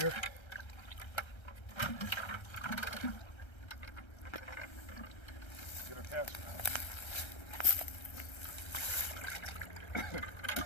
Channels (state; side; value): late; right; 1.3 ms